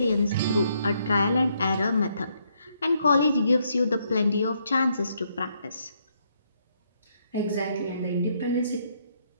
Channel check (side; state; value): both; inverted; correlation -0.74